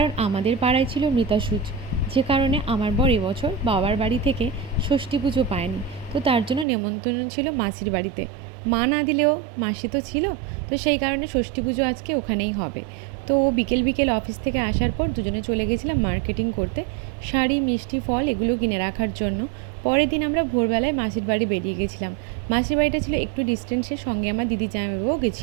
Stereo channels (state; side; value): drops out; left; at 6.7 s